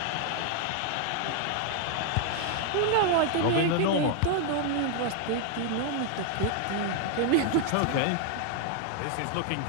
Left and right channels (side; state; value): both; different; correlation 0.00